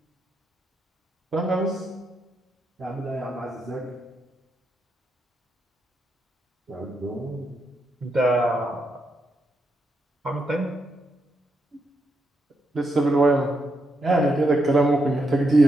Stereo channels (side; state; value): both; normal; correlation 0.81